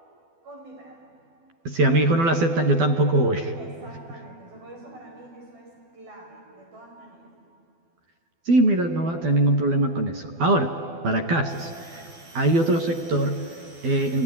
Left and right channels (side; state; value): left; late; 12 ms